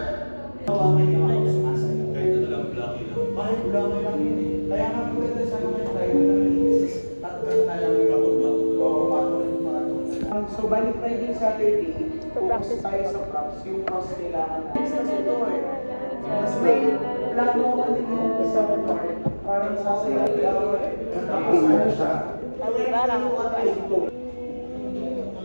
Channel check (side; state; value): both; inverted; correlation -1.00